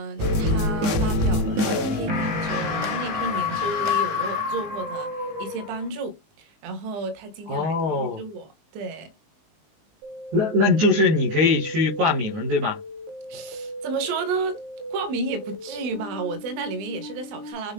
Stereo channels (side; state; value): left; late; 19 ms